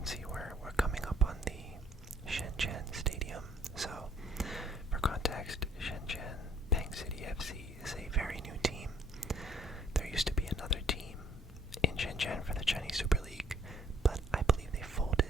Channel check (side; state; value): both; normal; correlation 0.62